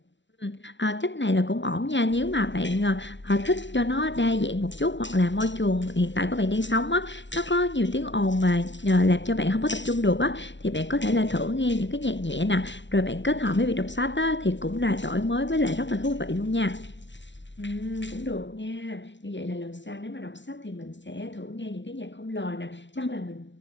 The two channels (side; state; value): right; late; 0.53 ms